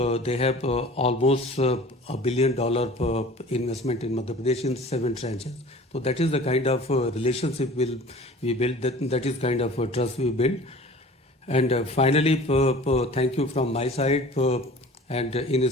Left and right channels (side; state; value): both; normal; correlation 0.43